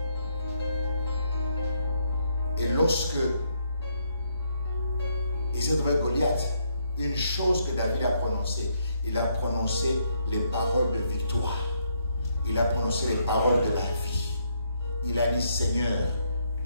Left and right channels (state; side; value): inverted; both; correlation -0.74